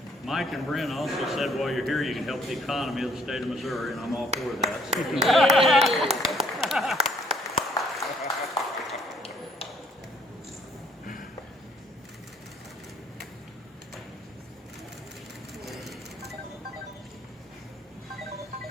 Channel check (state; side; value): normal; both; correlation 0.64